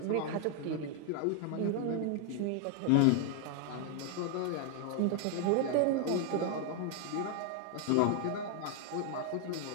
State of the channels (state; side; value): different; both; correlation 0.00